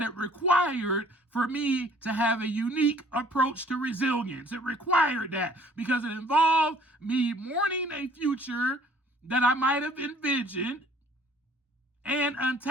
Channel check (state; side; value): normal; both; correlation 0.57